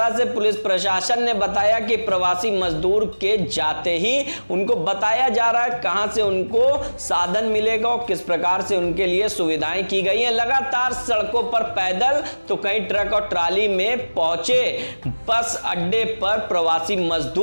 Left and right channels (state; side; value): inverted; both; correlation -1.00